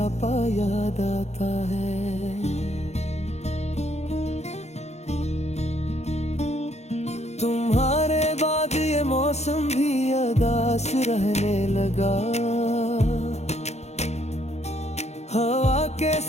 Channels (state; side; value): late; right; 0.32 ms